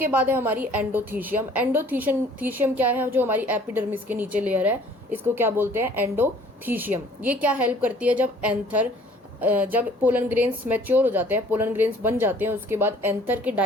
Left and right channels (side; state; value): both; normal; correlation 0.54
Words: बाद है हमारी एंडोथीशियम। एंडोथीशियम क्या है? जो हमारी एपिडर्मिस के नीचे लेयर है इसको क्या बोलते हैं? एंडोथीशियम। ये क्या हेल्प करती है? जब पोलन ग्रेन्स मैच्योर हो जाते हैं, पोलन ग्रेन्स बन जाते हैं, उसके बाद एंथर के